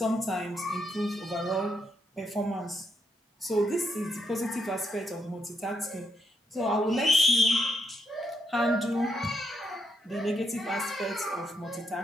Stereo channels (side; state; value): both; normal; correlation 0.77